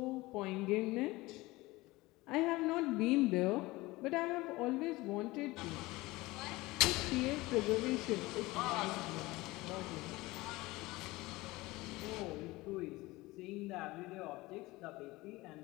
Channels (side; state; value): right; quieter; 20.5 dB